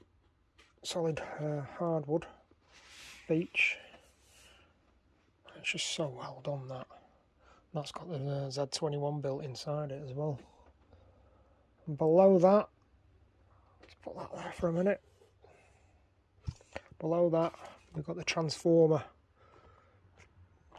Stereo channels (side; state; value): both; identical; correlation 1.00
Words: hardwood beech. It's just so well done, that. That's got the Z21 built inside it as well. And below that, let's put that there for a minute. Below that, we've got the transformer